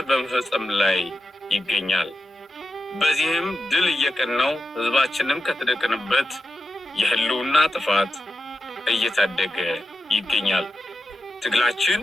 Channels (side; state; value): both; normal; correlation 0.90